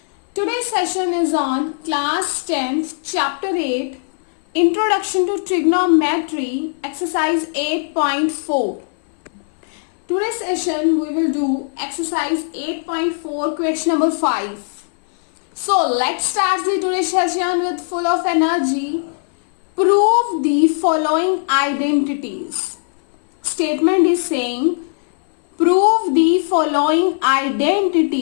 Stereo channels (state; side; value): silent; right; 62 dB below the other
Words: Today's session is on class 10th chapter 8 Introduction to Trigonometry exercise 8.4. Today's session we will do exercise 8.4 question number 5. So let's start the today's session with full of energy. Prove the following identities. Statement is saying prove the following